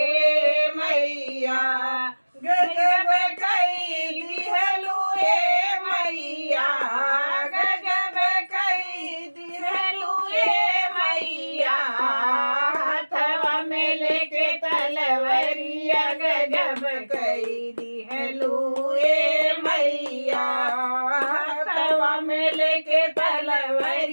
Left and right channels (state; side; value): inverted; both; correlation -1.00